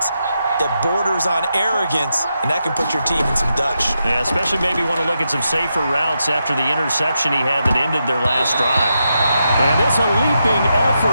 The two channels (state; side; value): inverted; both; correlation -0.85